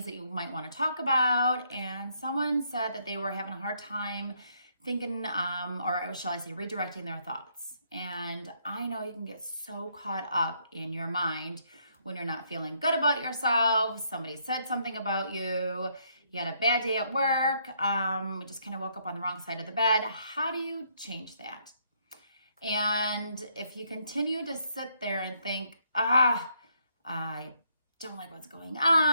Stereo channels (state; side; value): inverted; both; correlation -0.72